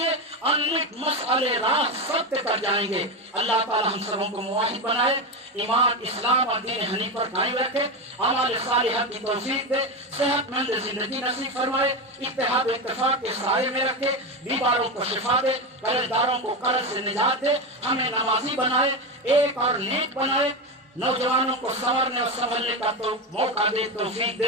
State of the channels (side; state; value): both; normal; correlation 0.16